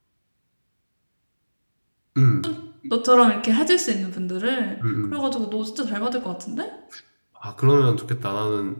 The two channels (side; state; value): both; inverted; correlation -1.00